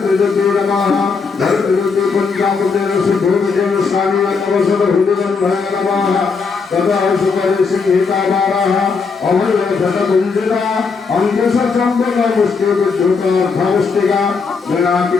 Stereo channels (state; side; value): quieter; right; 5.0 dB